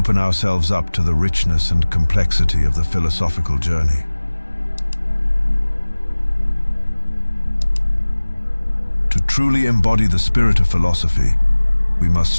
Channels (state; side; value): inverted; both; correlation -1.00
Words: ourselves up to the richness and complexity of the philosophical journey. To truly embody the spirit of philosophy, we must